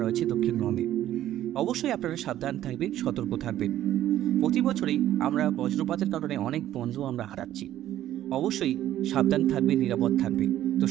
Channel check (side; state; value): left; quieter; 12.7 dB